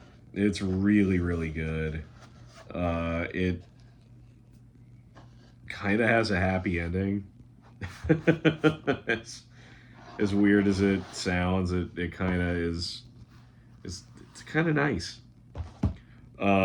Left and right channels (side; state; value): both; identical; correlation 1.00